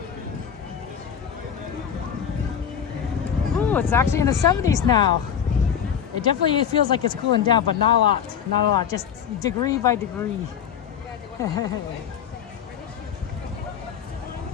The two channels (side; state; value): right; quieter; 8.3 dB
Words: Ooh, it's actually in the 70s now. It definitely feels like it's cooling down, but not a lot, just degree by degree.